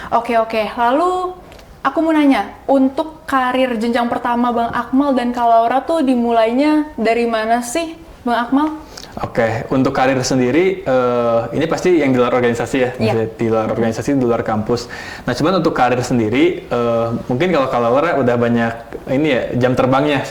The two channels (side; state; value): both; identical; correlation 1.00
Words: Oke. Lalu aku mau nanya, untuk karir jenjang pertama Bang Akmal dan Kak Laura tuh dimulainya dari mana sih Bang Akmal? Oke, untuk karir sendiri, ini pasti yang di luar organisasi ya, di luar organisasi, di luar kampus. Nah, cuman untuk karir sendiri, mungkin kalau Laura udah banyak ini ya jam terbangnya